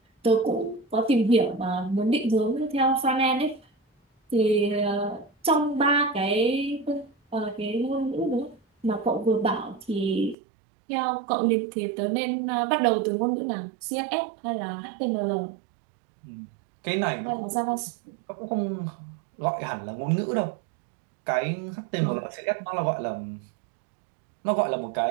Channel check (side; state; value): left; drops out; at 10.4 s